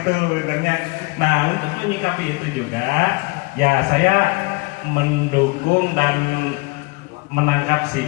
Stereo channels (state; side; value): quieter; right; 25.9 dB